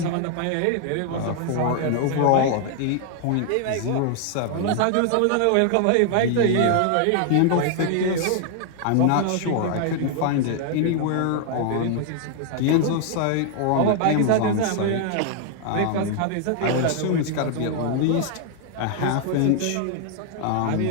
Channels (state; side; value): different; both; correlation 0.00